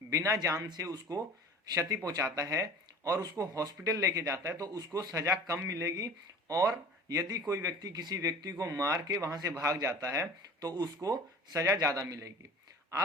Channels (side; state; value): both; normal; correlation 0.42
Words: बिना जान से उसको क्षति पहुंचाता है और उसको हॉस्पिटल लेके जाता है, तो उसको सजा कम मिलेगी। और यदि कोई व्यक्ति किसी व्यक्ति को मार के वहां से भाग जाता है तो उसको सजा ज्यादा मिलेगी।